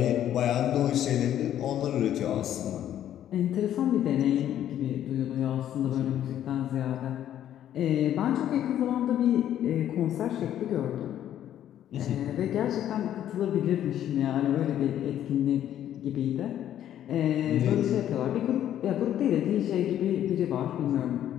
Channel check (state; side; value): quieter; right; 11.2 dB